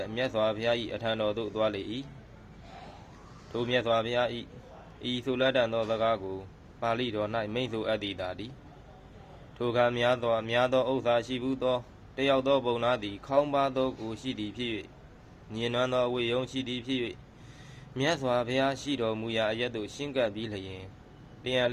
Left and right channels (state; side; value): identical; both; correlation 1.00